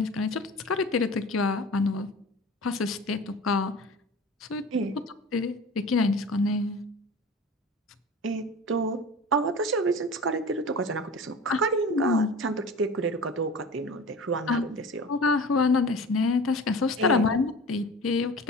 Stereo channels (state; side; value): normal; both; correlation 0.37